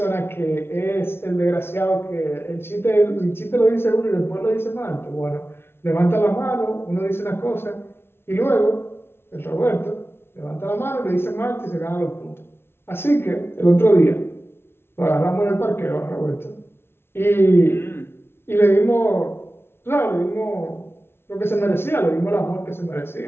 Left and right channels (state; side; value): late; right; 0.12 ms